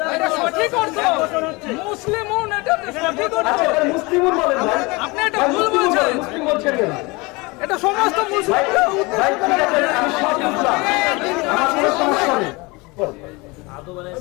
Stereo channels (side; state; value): right; quieter; 25.3 dB